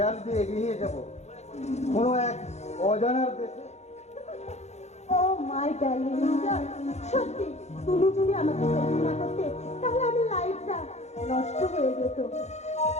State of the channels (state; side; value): late; right; 0.32 ms